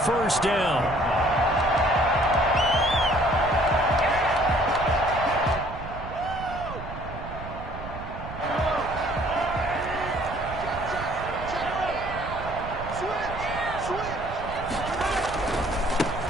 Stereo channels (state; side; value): noise; right; rumble, 10 dB below the sound